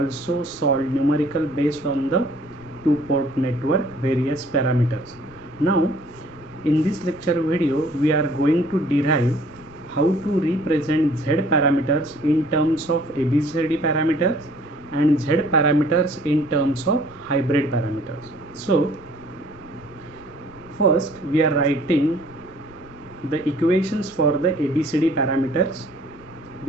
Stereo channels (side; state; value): left; noise; rumble, 23 dB below the sound